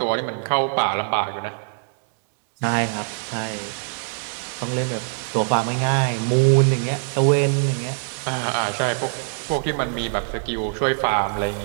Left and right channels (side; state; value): left; silent; digital silence